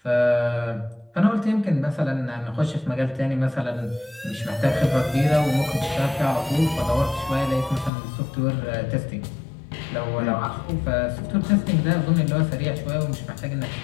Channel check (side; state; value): right; drops out; at 7.9 s